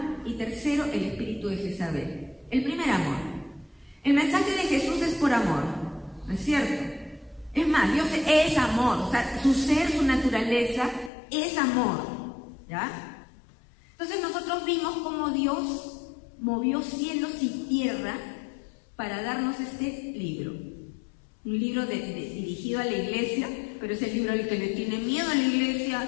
Y tercero, el espíritu de Jezabel. El primer amor. El mensaje de Jesús es por amor, ¿no es cierto? Es más, Dios es amor, o sea, su ser, su naturaleza es amor, ¿ya? Entonces nosotros vimos cómo Dios movió cielos y tierra para darnos este libro. Un libro dirigido a la iglesia, pero es el libro al que le tiene miedo a la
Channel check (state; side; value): drops out; right; at 11.1 s